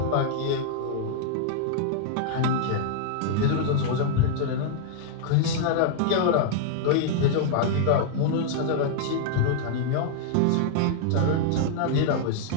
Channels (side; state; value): both; different; correlation -0.01